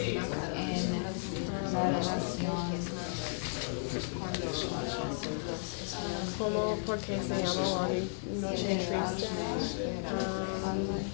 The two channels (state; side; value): silent; right; digital silence